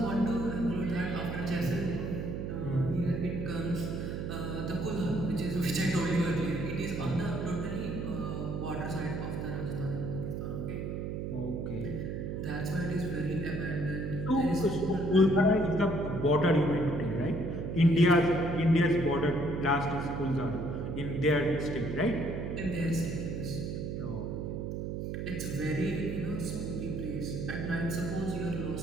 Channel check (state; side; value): noise; right; hum, 3 dB below the sound